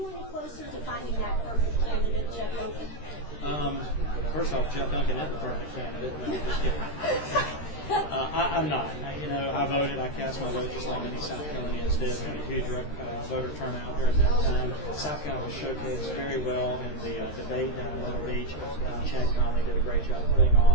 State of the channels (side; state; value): right; late; 13 ms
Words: any closer to finding that perfect candidate, Jeff Duncan? First off, Jeff Duncan is the perfect candidate. No, I'm just kidding. I'm not. I voted. I cast my vote just like many South Carolinians did. We had a huge voter turnout during that time. South Carolina was showcased very well in the debate down in Myrtle Beach. Chad Conley did a great job putting